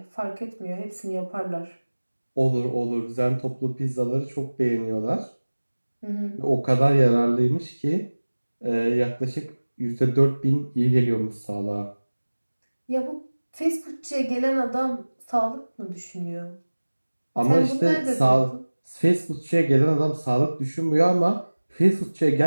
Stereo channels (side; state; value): both; inverted; correlation -1.00